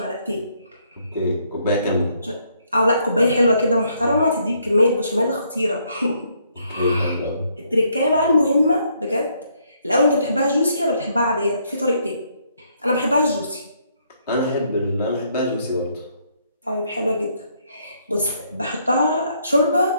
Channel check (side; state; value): both; inverted; correlation -0.71